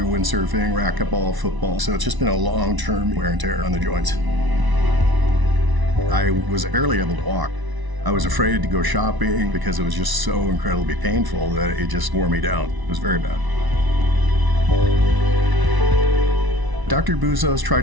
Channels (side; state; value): left; late; 1.0 ms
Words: windsurfing, racquetball, football. So it's just been a long-term wear and tear on the joints. I was barely able to walk. I was afraid to go shopping because it was just so incredibly painful that it just wore me down. It was very bad. Dr. Buzas